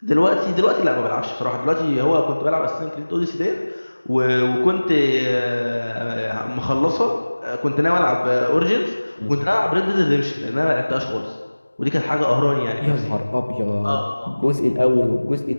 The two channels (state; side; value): inverted; both; correlation -1.00